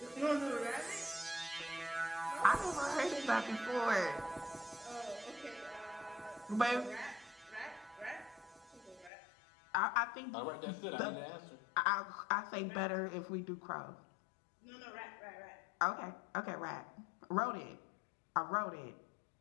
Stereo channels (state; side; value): drops out; right; at 9.1 s